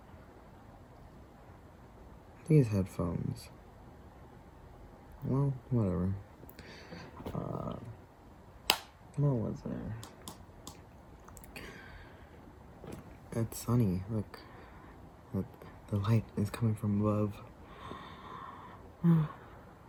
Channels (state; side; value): identical; both; correlation 1.00